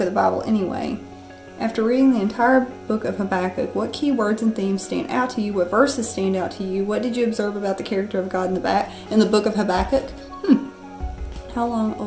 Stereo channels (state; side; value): identical; both; correlation 1.00